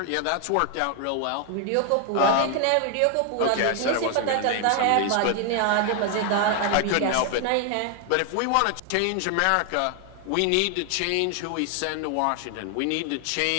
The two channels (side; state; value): both; different; correlation 0.00